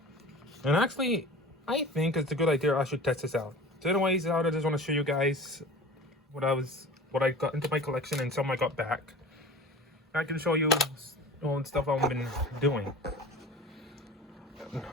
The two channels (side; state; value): both; normal; correlation 0.37